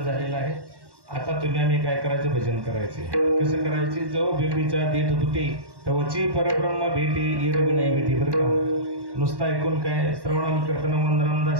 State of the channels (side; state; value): left; late; 1.1 ms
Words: आहे. आता तुम्ही आम्ही काय करायचं, भजन करायचे. कसं करायचे? जो बेबीचा देठ दुटे तवची परब्रह्म भेटे इरवी नाही भेटे. बरं का? नुसतं ऐकून काय? श्रवणम कीर्तनम वंदनम